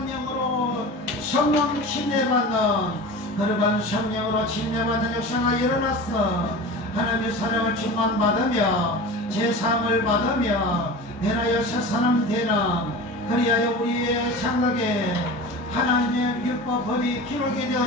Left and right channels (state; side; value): normal; both; correlation 0.33